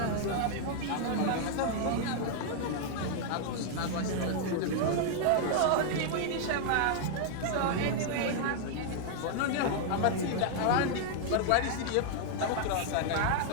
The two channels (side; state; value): both; different; correlation 0.00